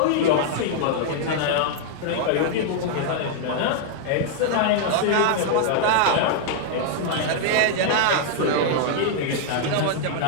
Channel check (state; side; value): different; both; correlation -0.01